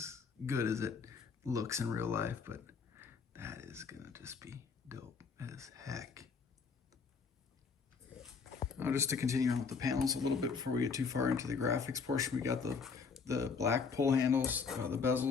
good as it looks in real life, but that is gonna just be dope as heck. Just to continue on with the panels a little bit before we get too far into the graphics portion, we got the black pull handles, the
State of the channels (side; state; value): right; quieter; 5.3 dB